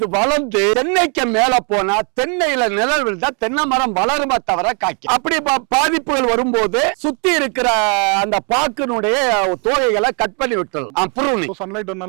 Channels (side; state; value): left; quieter; 37.1 dB